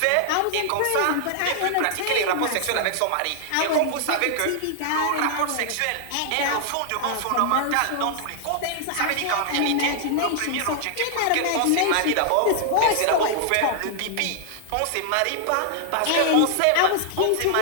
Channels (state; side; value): different; both; correlation -0.01